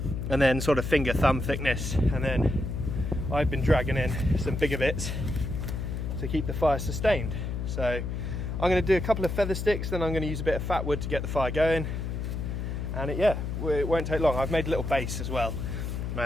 and then sort of finger thumb thickness. And then I've been dragging in some bigger bits to keep the fire sustained. So I'm going to do a couple of feather sticks, then I'm going to use a bit of fat wood to get the fire going. And it won't take long. I've made a little base as well.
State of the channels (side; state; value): left; noise; hum, 3 dB below the sound